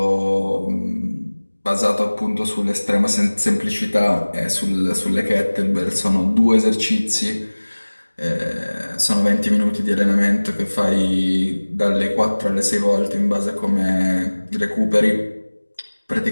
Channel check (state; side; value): inverted; both; correlation -1.00